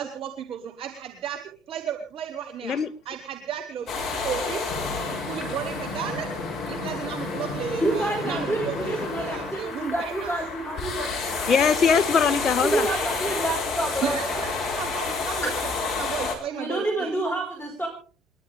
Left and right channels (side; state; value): both; normal; correlation 0.62